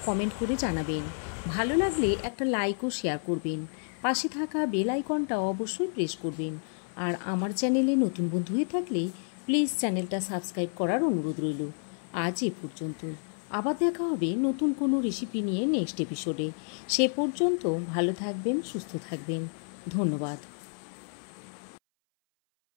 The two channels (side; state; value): right; silent; 58 dB below the other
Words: কমেন্ট করে জানাবেন। ভালো লাগলে একটা লাইক ও শেয়ার করবেন। পাশে থাকা বেল আইকনটা অবশ্যই প্রেস করবেন। আর আমার চ্যানেলে নতুন বন্ধু হয়ে থাকলে প্লিজ চ্যানেলটা সাবস্ক্রাইব করার অনুরোধ রইল। আজ এ পর্যন্তই। আবার দেখা হবে নতুন কোনো রেসিপি নিয়ে নেক্সট এপিসোডে। সে পর্যন্ত ভালো থাকবেন, সুস্থ থাকবেন। ধন্যবাদ।